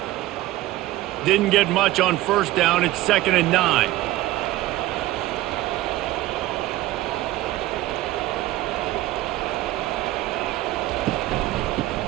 Didn't get much on 1st down. It's 2nd and 9.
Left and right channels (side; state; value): left; quieter; 16.5 dB